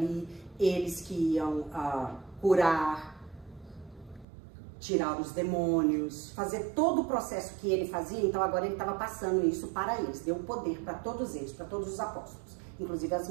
eles que iam curar, tirar os demônios, fazer todo o processo que ele fazia. Então agora ele estava passando isso para eles, deu poder para todos eles, para todos os apóstolos. Inclusive as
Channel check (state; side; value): drops out; left; at 4.2 s